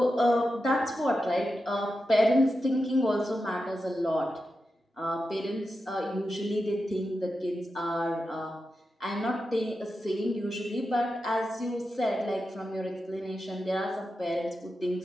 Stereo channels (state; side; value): normal; both; correlation 0.90